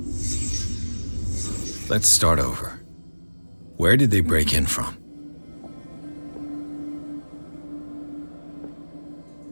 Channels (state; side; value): inverted; both; correlation -1.00